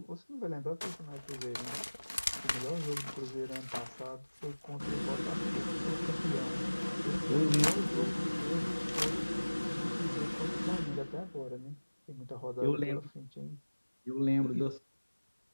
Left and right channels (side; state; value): both; inverted; correlation -1.00